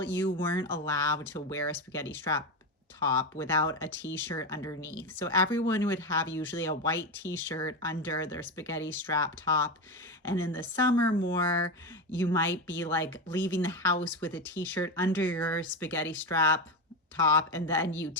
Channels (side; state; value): both; normal; correlation 0.16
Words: you weren't allowed to wear a spaghetti strap top without a t-shirt underneath. So everyone would have usually a white t-shirt under their spaghetti strap top. And in the summer more, you might be like leaving the house with a t-shirt under your spaghetti strap top and then you